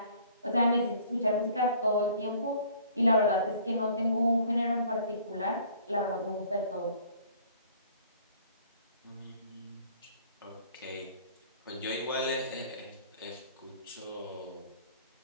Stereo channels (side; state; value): both; inverted; correlation -0.54